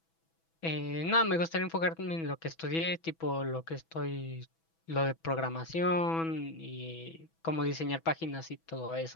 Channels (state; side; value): late; right; 6.1 ms